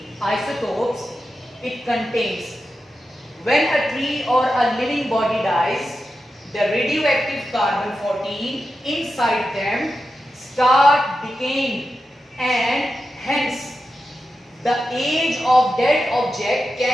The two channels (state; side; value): normal; both; correlation 0.90